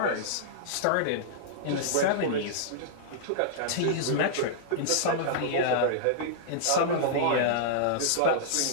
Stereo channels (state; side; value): different; both; correlation -0.02